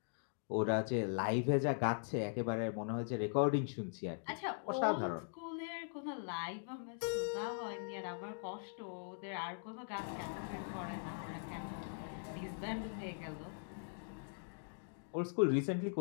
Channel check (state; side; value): silent; right; digital silence